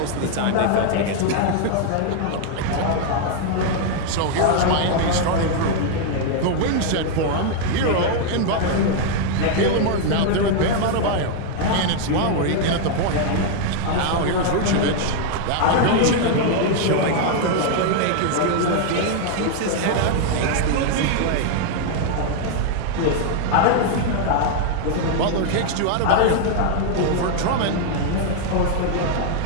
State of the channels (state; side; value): different; both; correlation 0.00